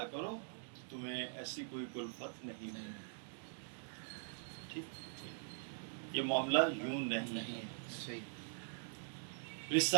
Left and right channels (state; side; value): silent; left; digital silence